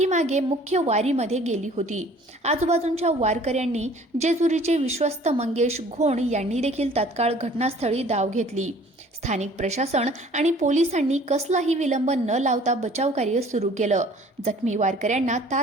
मुख्य वारीमध्ये गेली होती. आजूबाजूंच्या वारकऱ्यांनी जेजुरीचे विश्वस्त मंगेश घोण यांनी देखील तात्काळ घटनास्थळी धाव घेतली. स्थानिक प्रशासन आणि पोलिसांनी कसलाही विलंब न लावता बचाव कार्य सुरू केलं. जखमी वारकऱ्यांना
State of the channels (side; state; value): both; normal; correlation 0.52